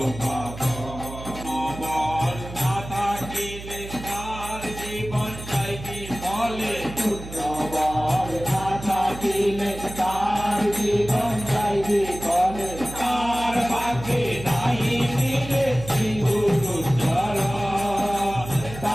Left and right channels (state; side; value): noise; right; hum, 12 dB below the sound